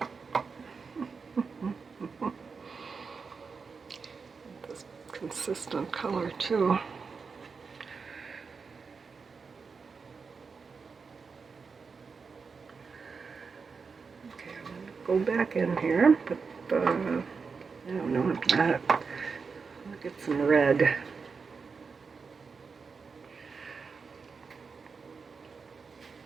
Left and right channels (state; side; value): quieter; left; 5.1 dB